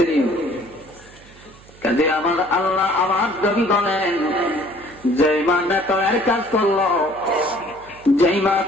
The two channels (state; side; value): noise; right; hum, 24 dB below the sound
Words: কাজে আমার আল্লাহ আমার নবী বলেন, যেই মা নেতরের কাজ করলো, যেই মা